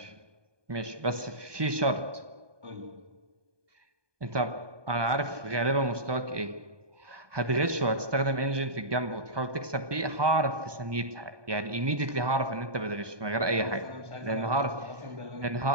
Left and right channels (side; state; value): left; late; 1.2 ms